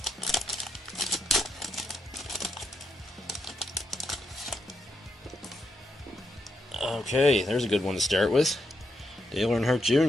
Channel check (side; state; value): both; normal; correlation 0.81